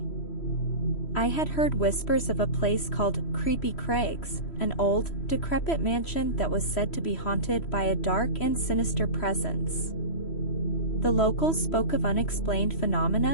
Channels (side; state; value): right; late; 3.1 ms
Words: I had heard whispers of a place called Creepy Craigs, an old, decrepit mansion that was said to be haunted by a dark and sinister presence. The locals spoke of unexplained